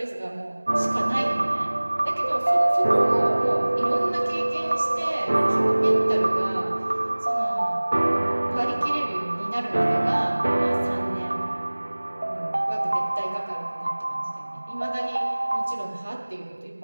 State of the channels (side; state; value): both; inverted; correlation -1.00